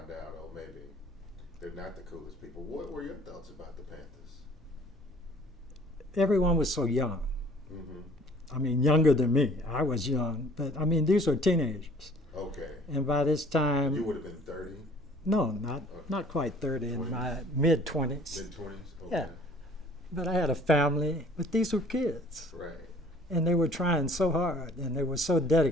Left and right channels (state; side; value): normal; both; correlation 0.54